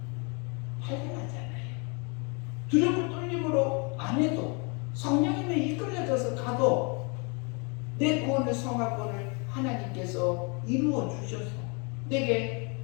발견하잖아요. 두렵고 떨림으로 안 해도 성령님에 이끌려져서 가도 내 구원의 성화권을 하나님께서 이루어 주셔서 내게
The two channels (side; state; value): right; quieter; 32.8 dB